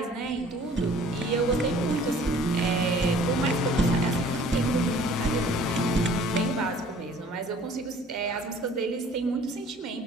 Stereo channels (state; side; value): normal; both; correlation 0.52